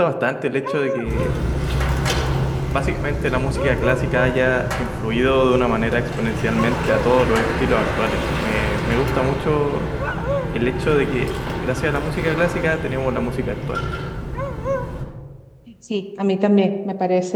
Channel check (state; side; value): identical; both; correlation 1.00